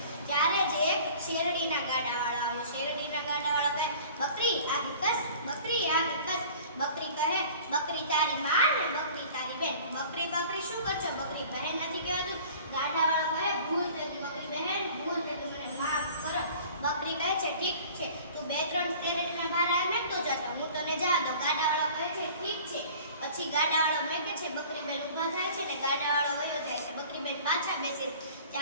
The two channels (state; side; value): inverted; both; correlation -0.46